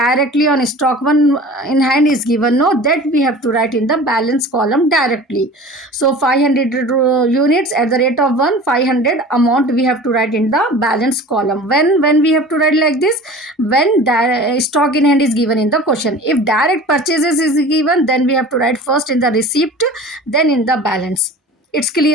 on stock one in hand is given, no, that we have to write in the balance column directly. So 500 units at the rate of 500 amount we have to write in the balance column. When we have to write like this, when stock in hand is given in the question. If direct purchases is given, then we have to write first in the receipt, then in the balance. It's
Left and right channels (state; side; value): normal; both; correlation 0.40